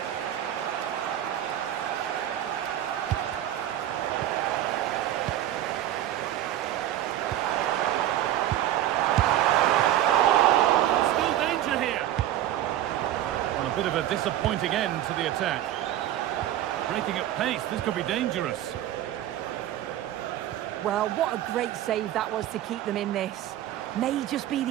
Bit of a disappointing end to the attack. Breaking at pace, this could be dangerous. Well, what a great save that was to keep them in this. May just be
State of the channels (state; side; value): quieter; left; 12.5 dB